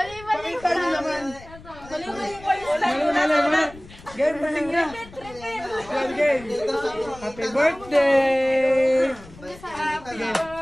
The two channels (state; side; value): noise; left; rumble, 20 dB below the sound